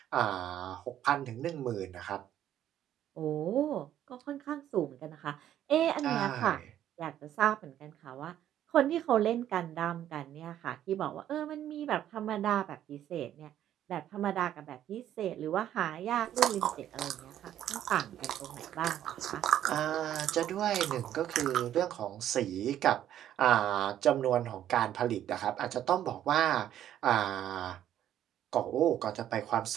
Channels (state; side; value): quieter; left; 11.3 dB